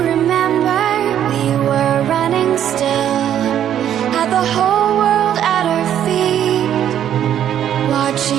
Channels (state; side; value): quieter; left; 10.3 dB